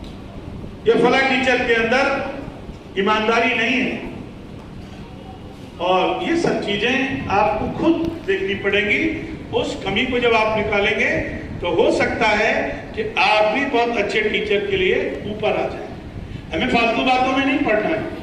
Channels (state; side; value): identical; both; correlation 1.00